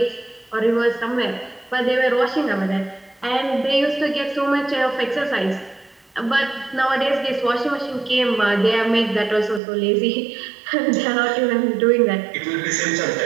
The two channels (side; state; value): left; drops out; at 9.6 s